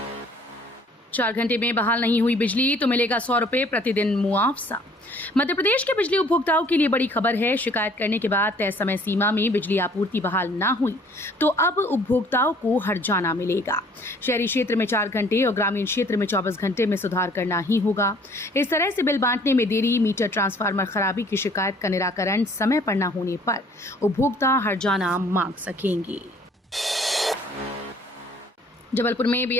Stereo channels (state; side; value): normal; both; correlation 0.56